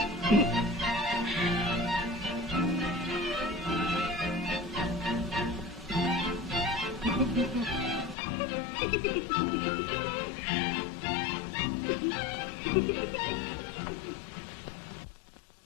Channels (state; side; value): drops out; right; at 8.2 s